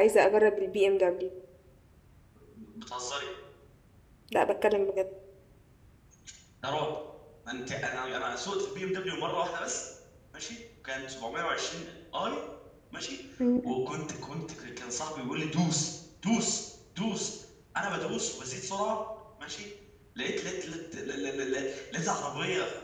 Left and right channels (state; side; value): identical; both; correlation 1.00